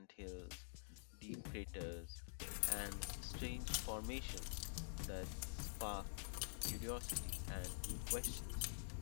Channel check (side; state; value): right; silent; digital silence